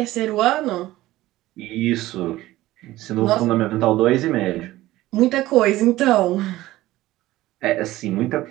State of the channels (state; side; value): quieter; left; 16.6 dB